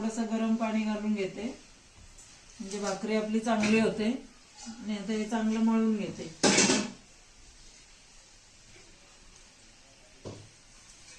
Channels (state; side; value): identical; both; correlation 1.00